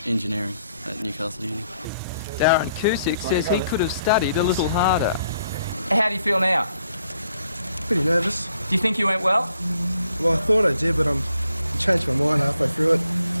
Engineering at Newcastle Uni. Darren Cusick says he could have studied a little harder. How do you feel now? Pretty nervous. Do you think you went well? Well, I thought I did, but I changed my mind halfway through it,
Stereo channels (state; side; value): inverted; both; correlation -0.71